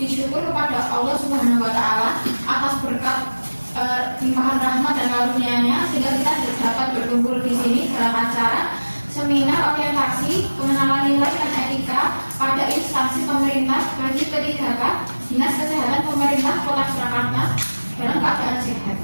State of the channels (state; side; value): inverted; both; correlation -1.00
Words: syukur kepada Allah Subhanahu wa Ta'ala atas berkat limpahan rahmat dan karunia-Nya sehingga kita dapat berkumpul di sini dalam acara seminar orientasi pengenalan nilai dan etika pada instansi pemerintah bagi P3K Dinas Kesehatan Pemerintah Kota Surakarta dalam keadaan sehat.